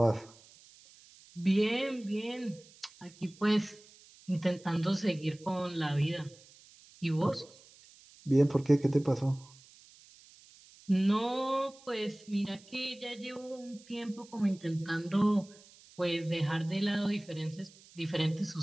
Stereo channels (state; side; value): noise; right; hiss, 24 dB below the sound